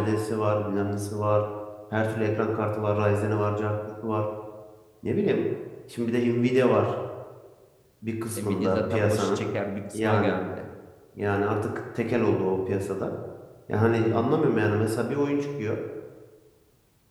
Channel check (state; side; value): identical; both; correlation 1.00